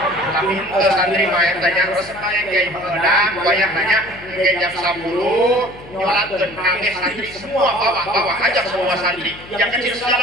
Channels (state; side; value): noise; left; hum, 19 dB below the sound